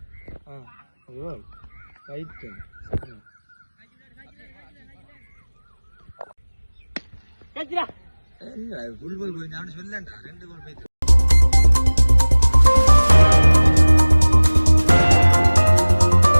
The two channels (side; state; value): both; inverted; correlation -1.00